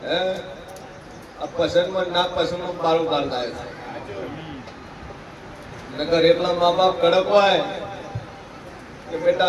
હે આ પસંદમાં ના પસંદમાં બારું બાર થાય છે નકર એટલા મા બાપ કડક હોય કે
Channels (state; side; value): identical; both; correlation 1.00